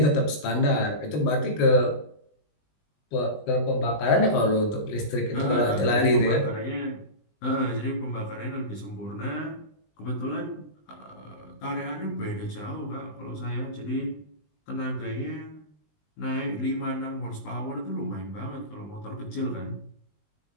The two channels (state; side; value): late; right; 20 ms